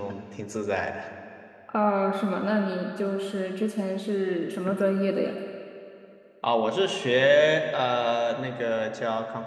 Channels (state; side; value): identical; both; correlation 1.00